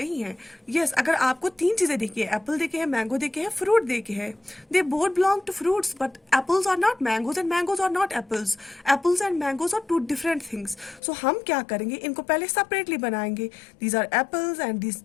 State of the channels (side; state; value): right; drops out; at 11.0 s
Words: है? यस, अगर आपको 3 चीजें देखी है, एप्पल देखे हैं, मैंगो देखे हैं, फ्रूट देखे हैं, they both belong to fruits, but apples are not mangoes and mangoes are not apples. Apples and mangoes are 2 different things. So हम क्या करेंगे, इनको पहले सेपरेटली बनाएंगे, these are apples and